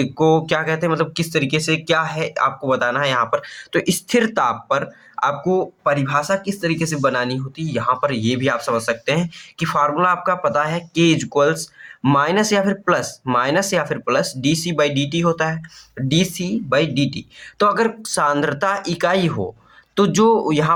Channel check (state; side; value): identical; both; correlation 1.00